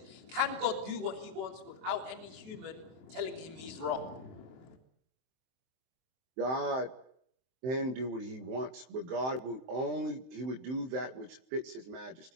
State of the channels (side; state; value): left; late; 23 ms